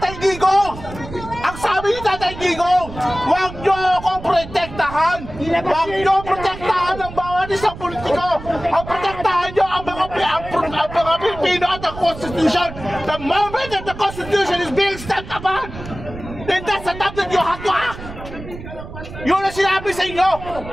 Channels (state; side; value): noise; right; rumble, 13 dB below the sound